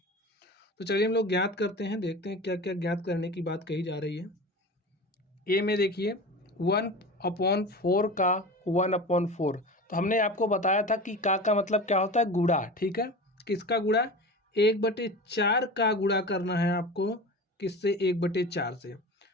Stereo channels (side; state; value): both; normal; correlation 0.32